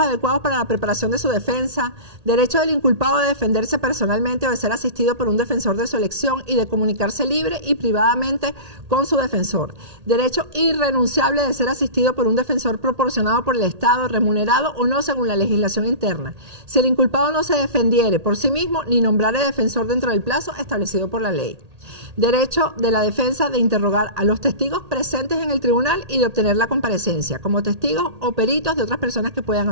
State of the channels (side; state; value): left; late; 1.8 ms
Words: adecuados para la preparación de su defensa, derecho del inculpado de defenderse personalmente o de ser asistido por un defensor de su elección y de comunicarse libre y privadamente con su defensor, derecho irrenunciable de ser asistido por un defensor proporcionado por el Estado, remunerado o no según la legislación interna. Si el inculpado no se defendiere por sí mismo ni nombrare defensor dentro del plazo establecido por la ley. Derecho de la defensa de interrogar a los testigos presentes en el tribunal y de obtener la comparecencia como testigos o peritos de otras personas que puedan